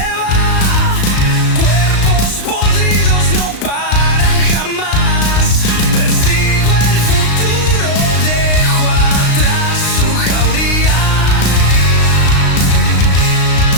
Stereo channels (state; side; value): late; right; 35 ms